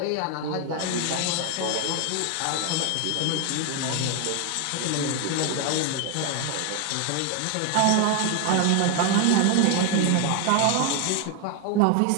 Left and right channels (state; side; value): different; both; correlation 0.01